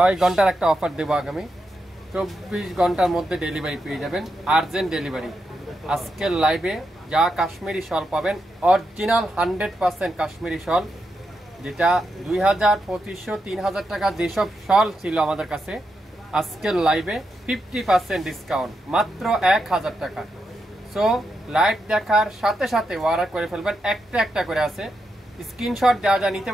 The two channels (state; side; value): normal; both; correlation 0.85